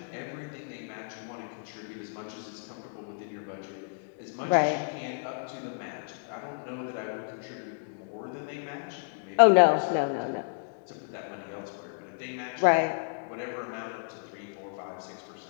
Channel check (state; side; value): silent; right; digital silence